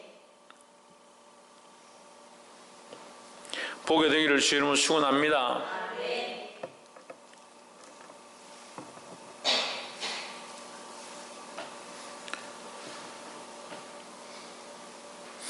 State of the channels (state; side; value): identical; both; correlation 1.00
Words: 보게 되기를 주 이름으로 축원합니다.